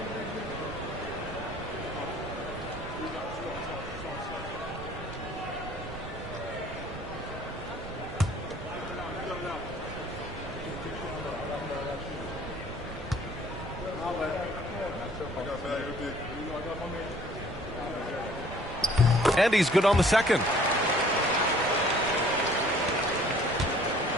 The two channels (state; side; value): noise; right; rumble, 13 dB below the sound